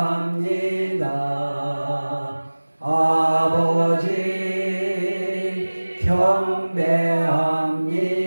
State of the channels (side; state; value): both; inverted; correlation -1.00